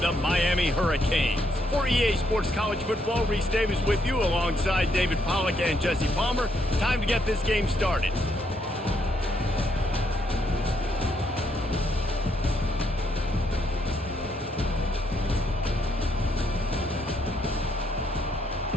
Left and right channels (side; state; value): both; normal; correlation 0.74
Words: the Miami Hurricanes. For EA Sports College Football, Reese Davis with you alongside David Pollack and Jesse Palmer. Time to get this game started.